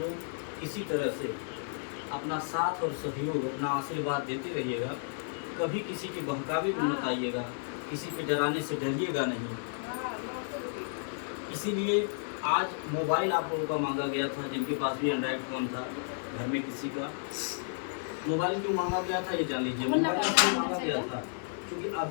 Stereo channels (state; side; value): silent; right; digital silence